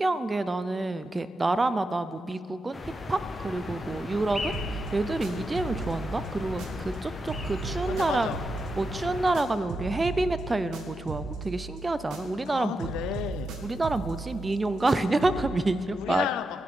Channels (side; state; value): both; normal; correlation 0.87